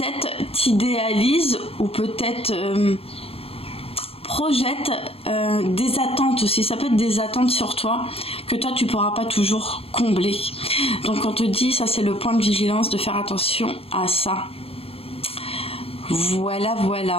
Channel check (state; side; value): late; right; 0.28 ms